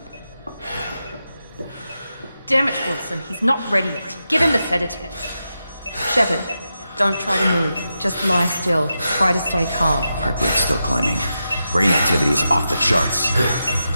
Damn it, Wilson, he's not ready yet. Give him the sedative. Shepard, don't try to move. Just lie still. Try to stay calm. Heart rate's still climbing. Brain activity is off the charts.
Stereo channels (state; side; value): inverted; both; correlation -0.88